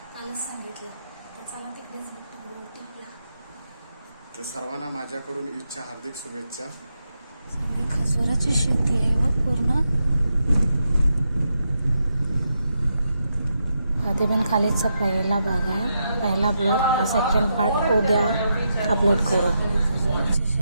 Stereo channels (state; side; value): inverted; both; correlation -0.84